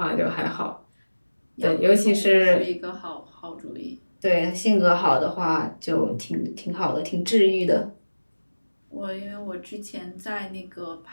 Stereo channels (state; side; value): inverted; both; correlation -1.00